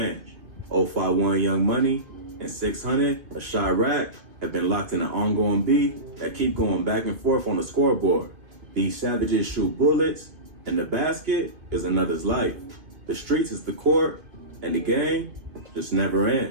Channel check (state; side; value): late; left; 2.6 ms